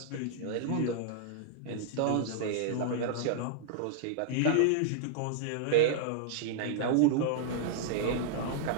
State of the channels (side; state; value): both; different; correlation -0.01